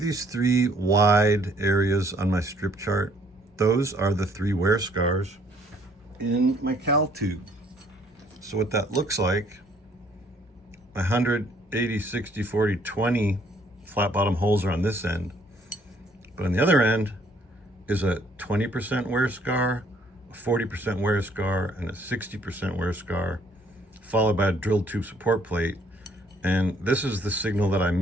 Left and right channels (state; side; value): normal; both; correlation 0.63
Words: 3 wide areas on my strip chart? Those are the 3 wear scars in my cal tube. So what that looks like, 100, 80, 60, 40, 20 flat bottom holes are on this end. But on the other end is a 20% wear scar, a 40% wear scar, and a 60% wear scar, followed by a drilled tube support plate. And this is the signal that I